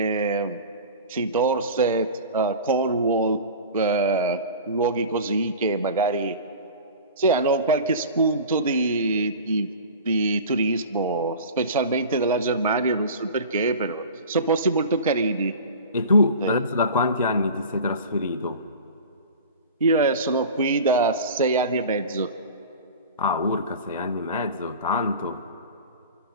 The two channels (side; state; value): both; inverted; correlation -0.36